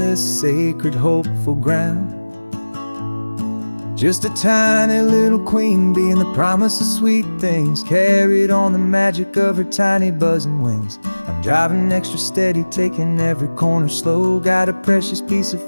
sacred, hopeful ground. Just a tiny little queen bee and the promise of sweet things, carried on the magic of her tiny buzzing wings. I'm driving extra steady, taking every corner slow. Got a precious piece of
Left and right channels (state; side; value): inverted; both; correlation -1.00